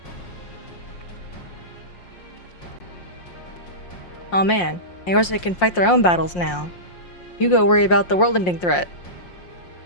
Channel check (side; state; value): right; late; 5.6 ms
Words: Oh man, Eorze can fight their own battles now. You go worry about the world-ending threat.